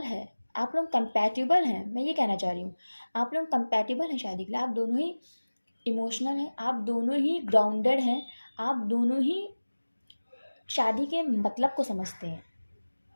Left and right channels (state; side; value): inverted; both; correlation -1.00